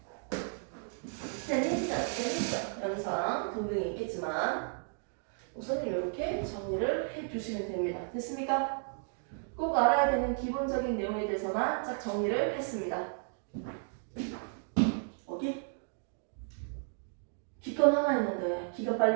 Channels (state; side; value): silent; left; 55 dB below the other